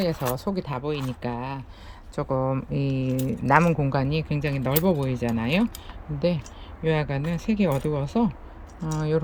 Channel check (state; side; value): identical; both; correlation 1.00